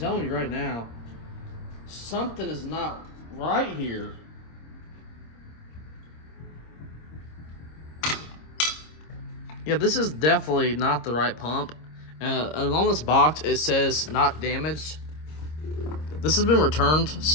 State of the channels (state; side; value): late; right; 26 ms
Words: you right now. Something is not right here. Yeah, this is definitely not the right pump. And on this box, it says not damaged. This has been returned,